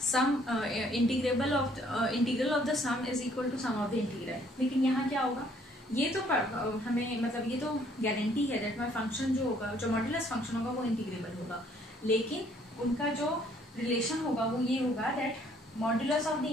Sum integrable of integral of the sum is equal to sum of the integral. लेकिन यहाँ क्या होगा, ये तो हमें मतलब ये तो गारंटी है दैट माय फंक्शन जो होगा, जो मॉड्यूलस फंक्शन होगा वो इंटीग्रेबल होगा, लेकिन उनका जो रिलेशन होगा वो ये होगा that modulus of the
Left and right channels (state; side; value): normal; both; correlation 0.63